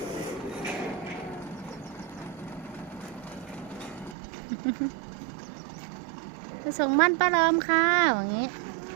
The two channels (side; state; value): left; drops out; at 4.2 s